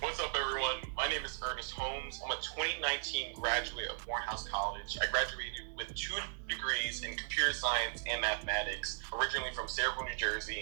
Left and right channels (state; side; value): silent; left; digital silence